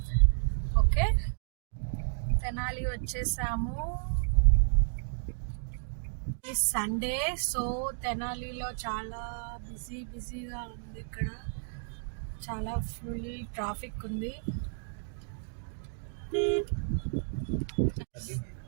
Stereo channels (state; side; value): silent; left; digital silence